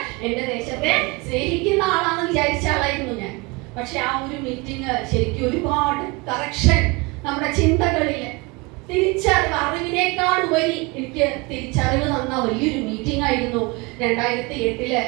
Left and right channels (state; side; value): quieter; left; 25.9 dB